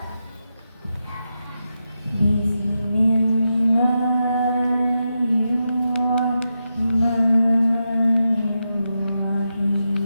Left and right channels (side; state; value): both; inverted; correlation -0.87